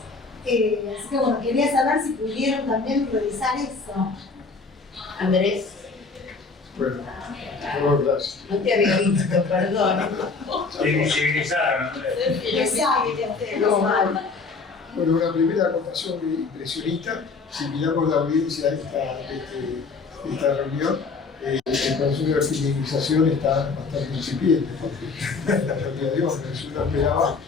Así que bueno, quería saber si pudieron también revisar eso. Andrés, Bueno, gracias. no te había visto, perdón. Invisibilizaron, Andrés. Exacto. Bueno, una primera acotación impresionista. Si miramos la audiencia de esta reunión, el proceso de feminización está bastante incipiente, porque en realidad Dios, no esperaba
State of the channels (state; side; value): quieter; right; 4.3 dB